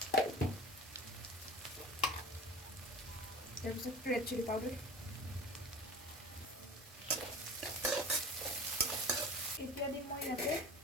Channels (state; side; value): normal; both; correlation 0.37